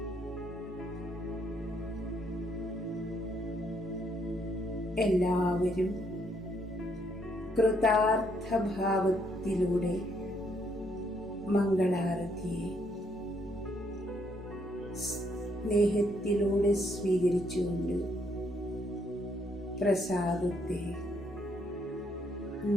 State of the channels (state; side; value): normal; both; correlation 0.71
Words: എല്ലാവരും കൃതാർത്ഥഭാവത്തിലൂടെ മംഗളാരതിയെ സ്നേഹത്തിലൂടെ സ്വീകരിച്ചുകൊണ്ട് പ്രസാദത്തെ